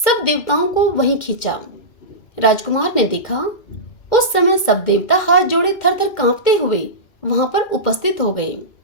देवताओं को वहीं खींचा। राजकुमार ने देखा उस समय सब देवता हाथ जोड़े थर थर कांपते हुए वहां पर उपस्थित हो गए।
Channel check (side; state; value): right; late; 2.1 ms